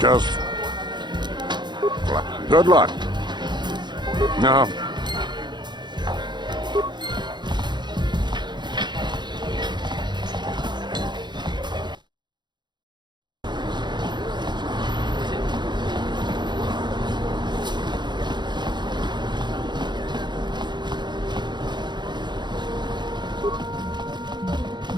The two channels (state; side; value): late; left; 0.21 ms